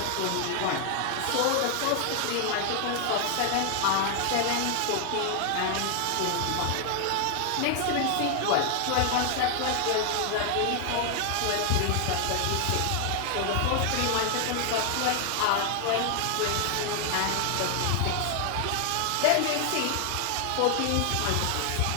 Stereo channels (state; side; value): different; both; correlation 0.00